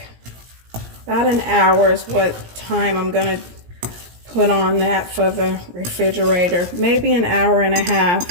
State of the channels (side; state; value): left; late; 17 ms